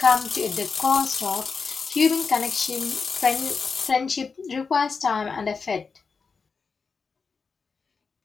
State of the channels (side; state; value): right; quieter; 5.1 dB